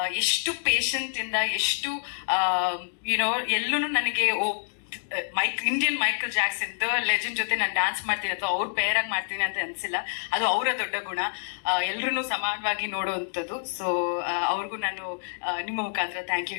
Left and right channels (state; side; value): silent; right; digital silence